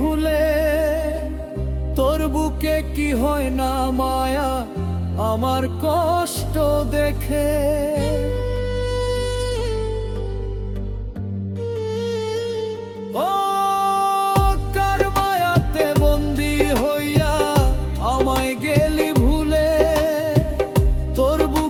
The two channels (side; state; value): both; identical; correlation 1.00